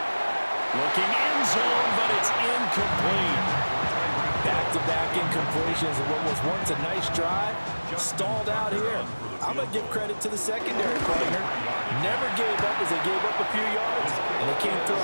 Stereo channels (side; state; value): both; inverted; correlation -1.00